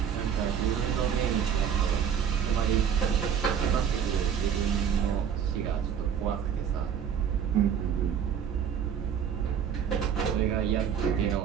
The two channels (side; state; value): left; quieter; 8.1 dB